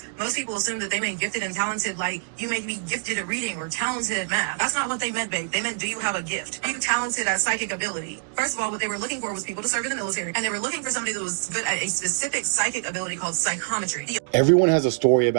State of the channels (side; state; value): left; silent; digital silence